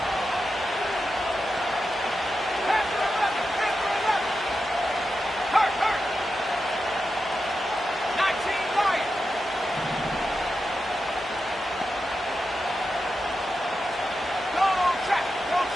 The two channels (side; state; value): both; normal; correlation 0.89